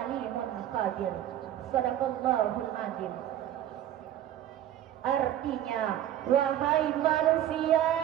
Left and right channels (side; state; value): left; quieter; 11.8 dB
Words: alimun khabir. Shadaqallahul azim. Artinya, wahai manusia,